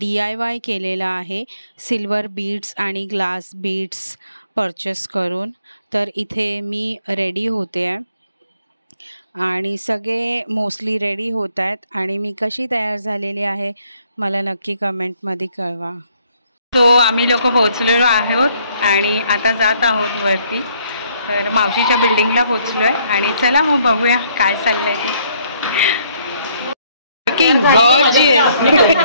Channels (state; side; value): inverted; both; correlation -0.67